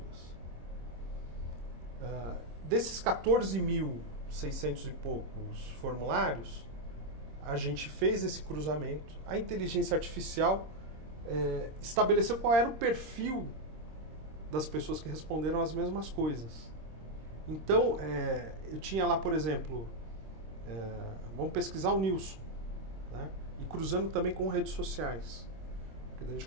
Desses 14.600 e poucos formulários, a gente fez esse cruzamento, a inteligência artificial estabeleceu qual era o perfil das pessoas que responderam as mesmas coisas. Então, eu tinha lá, por exemplo, vamos pesquisar o Nilson, né? E cruzando também com redes sociais, porque a gente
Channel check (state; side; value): late; left; 26 ms